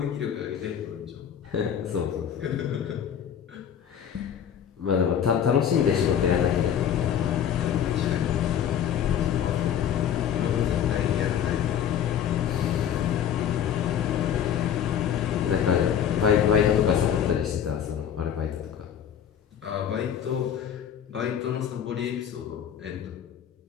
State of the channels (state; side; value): quieter; right; 9.0 dB